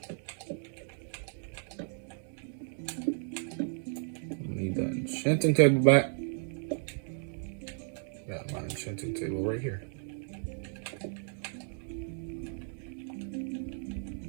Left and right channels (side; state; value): left; silent; 55 dB below the other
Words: Need that enchanting table back. Got my enchanting table right here.